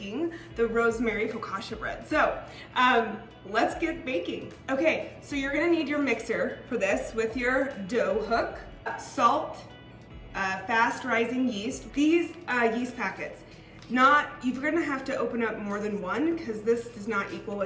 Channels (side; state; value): both; identical; correlation 1.00